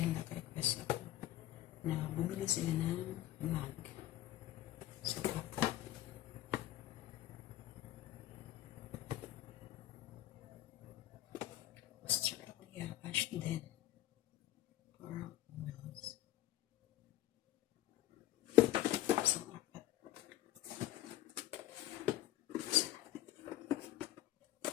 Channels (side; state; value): right; quieter; 14.2 dB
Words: nag-request ako na bumili sila ng mug. So, Australia, Ashton, Coral Mills. So, apat.